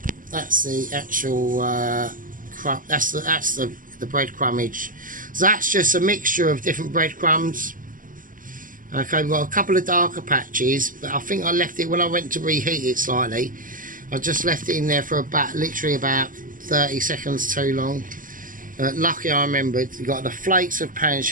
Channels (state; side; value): late; left; 0.39 ms